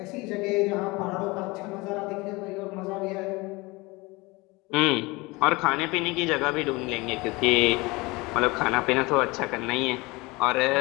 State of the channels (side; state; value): right; quieter; 23.8 dB